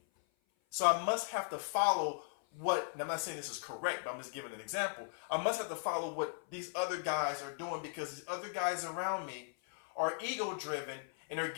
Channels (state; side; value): silent; right; 53 dB below the other